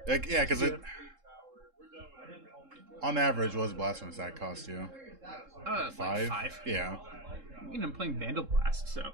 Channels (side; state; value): left; late; 3.7 ms